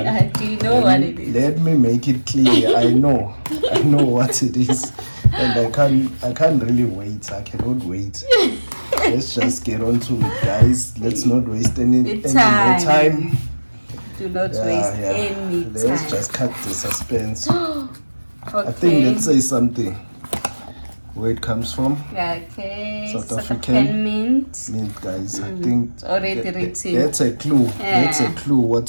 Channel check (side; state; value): both; inverted; correlation -1.00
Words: Do you know what it is? Let me make it clear. I know what it is, and I can't really wait. I cannot wait. Let's just get on to it, guys. Let's not waste any more time. Do not waste any time. Let's just cut the suspense. Okay. I think let's say something. Where it comes from? Okay. South African mint. Mint, guys. I think It's already written. that's a clue. That's a clue.